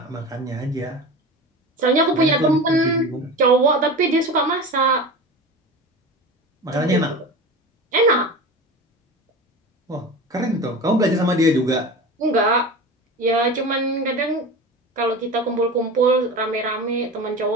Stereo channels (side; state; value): both; normal; correlation 0.31